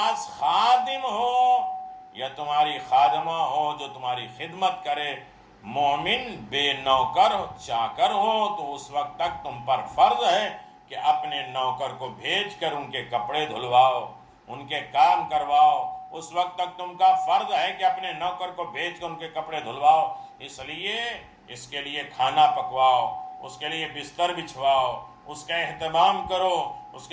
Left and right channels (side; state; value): both; identical; correlation 1.00